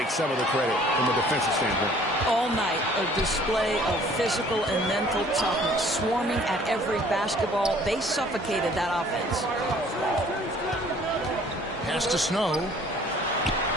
some of the credit from a defensive standpoint. All night, a display of physical and mental toughness, swarming at every basketball. They suffocated that offense. Pass to Snow.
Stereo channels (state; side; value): normal; both; correlation 0.55